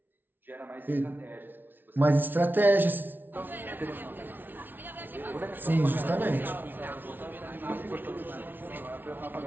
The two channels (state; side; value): late; left; 0.093 ms